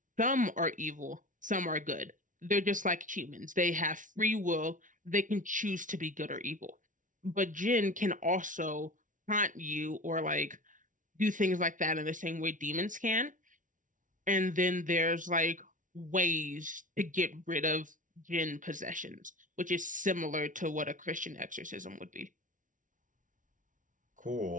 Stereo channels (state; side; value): late; left; 0.38 ms